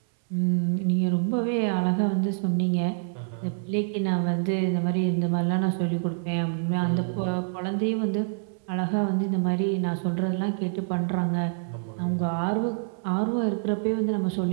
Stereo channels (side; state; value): left; silent; digital silence